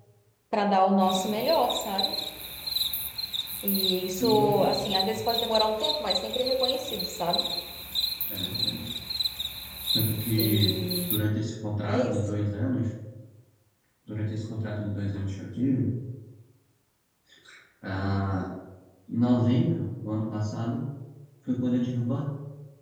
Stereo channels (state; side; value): identical; both; correlation 1.00